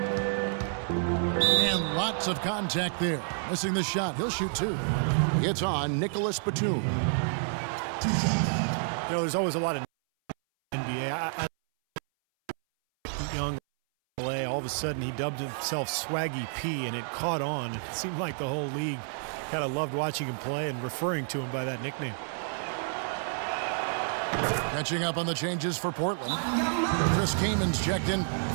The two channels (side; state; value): left; silent; 58 dB below the other